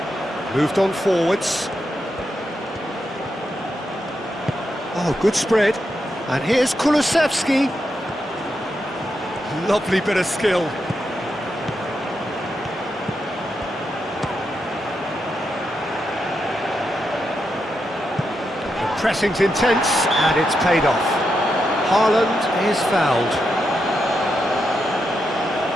Moved on forwards. Oh, good spread. And here's Kulusevski. Lovely bit of skill. The pressing's intense, and it's paid off. Haaland is fouled.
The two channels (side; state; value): both; normal; correlation 0.84